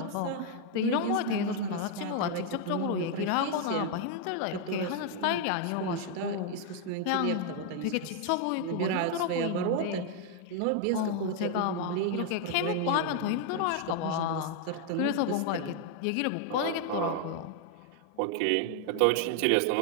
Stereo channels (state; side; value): different; both; correlation 0.00